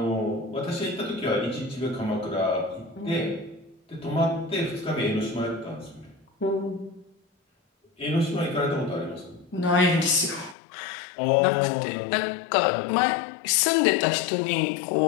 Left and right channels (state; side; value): drops out; right; at 10.6 s